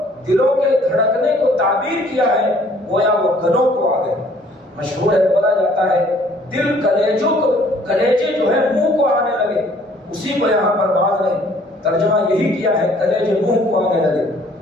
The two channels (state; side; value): normal; both; correlation 0.58